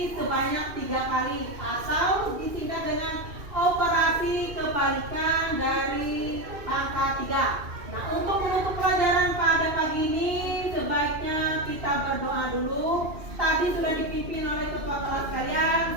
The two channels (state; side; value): late; left; 2.7 ms